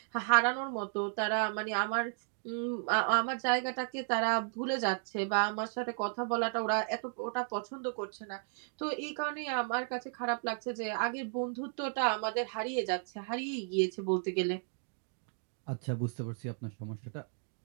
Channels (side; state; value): left; silent; 55 dB below the other